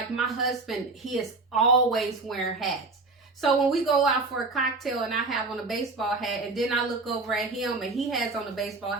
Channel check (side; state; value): left; quieter; 3.5 dB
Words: my husband, he is always wearing hats. So when we go out for a cocktail and I have on a baseball hat, and then I look over at him and he has on a baseball